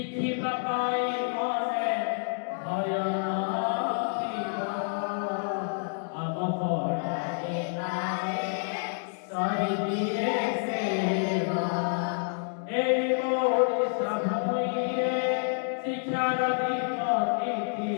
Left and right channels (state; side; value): silent; right; digital silence